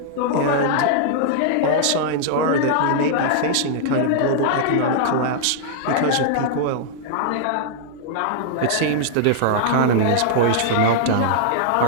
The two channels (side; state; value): both; different; correlation -0.01